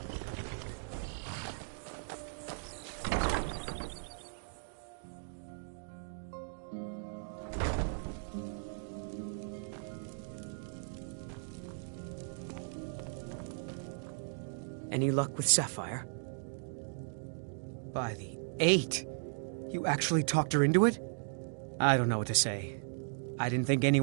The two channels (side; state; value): left; silent; digital silence